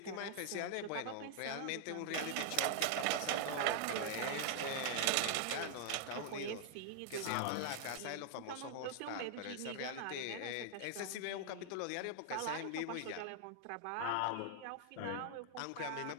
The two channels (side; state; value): both; different; correlation 0.00